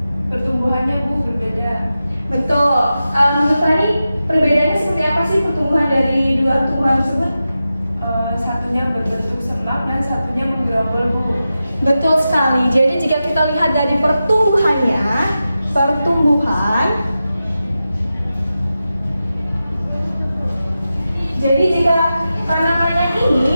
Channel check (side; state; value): both; inverted; correlation -0.92